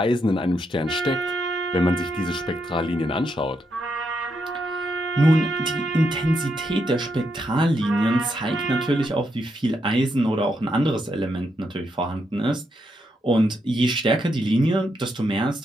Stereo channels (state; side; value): normal; both; correlation 0.80